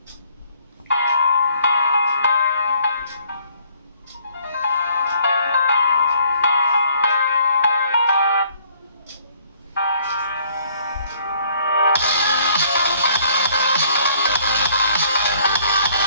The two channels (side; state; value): both; inverted; correlation -0.61